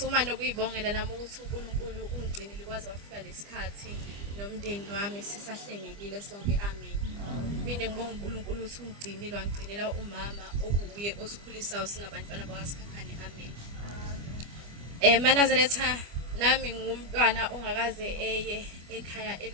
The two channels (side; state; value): left; late; 25 ms